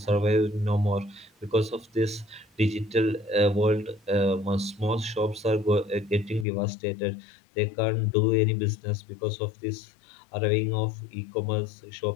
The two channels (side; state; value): right; drops out; at 6.5 s